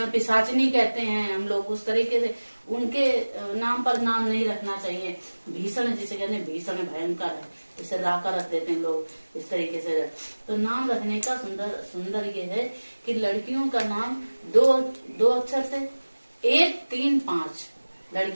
पिशाचनी कहते हैं हम लोग, उस तरीके से उनके नाम पर नाम नहीं रखना चाहिए। भीषण जिसे कहते हैं, भीषण भयंकर है, इसे राका रख देते हैं लोग इस तरीके से। तो नाम रखने का सुंदर ये है कि लड़कियों का नाम दो अक्षर से 1, 3, 5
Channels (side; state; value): both; inverted; correlation -1.00